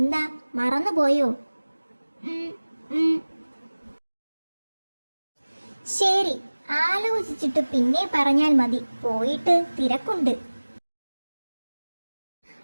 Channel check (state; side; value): inverted; both; correlation -1.00